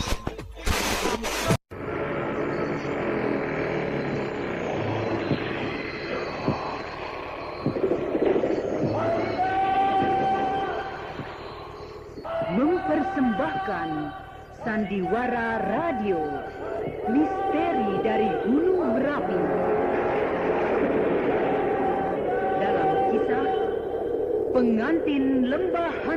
Sandiwara Radio, Misteri dari Gunung Merapi. Dalam kisah Pengantin Lembah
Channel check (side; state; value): both; identical; correlation 1.00